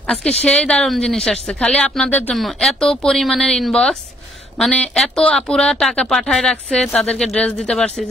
আজকে সেই দারুণ জিনিস আসছে খালি আপনাদের জন্য। এত পরিমাণের ইনবক্স, মানে এত আপুরা টাকা পাঠায় রাখছে, তাদেরকে ড্রেস দিতে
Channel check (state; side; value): normal; both; correlation 0.66